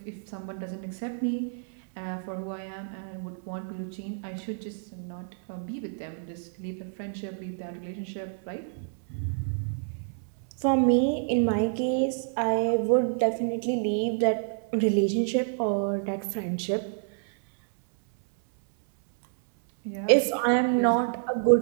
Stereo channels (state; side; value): silent; left; 59 dB below the other